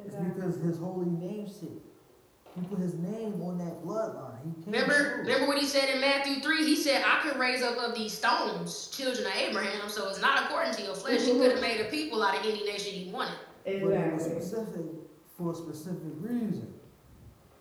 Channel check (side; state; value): both; identical; correlation 1.00